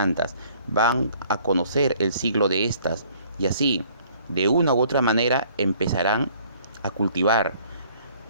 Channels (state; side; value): inverted; both; correlation -0.58